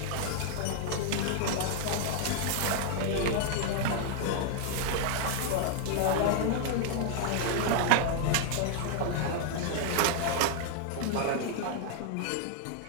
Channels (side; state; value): both; different; correlation 0.00